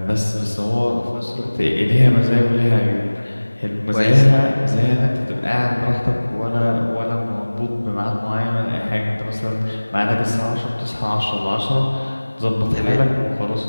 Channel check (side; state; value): both; inverted; correlation -1.00